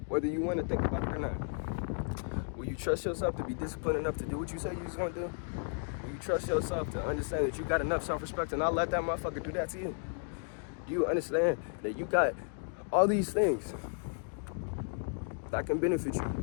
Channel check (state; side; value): silent; right; 55 dB below the other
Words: Whether you want to think about it or not. Will you trust yourself to be disciplined enough to do what you say you're going to do? Will you trust yourself to understand that you got enough self-respect to not let that motherfucker do that to you? Do you understand that you got all these things that can benefit